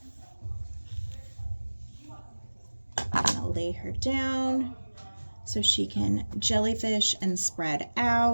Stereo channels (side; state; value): both; inverted; correlation -1.00